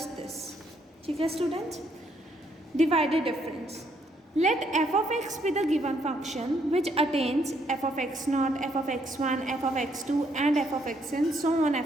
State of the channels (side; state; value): both; normal; correlation 0.71